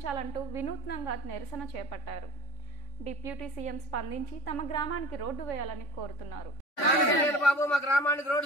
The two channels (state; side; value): late; right; 3.5 ms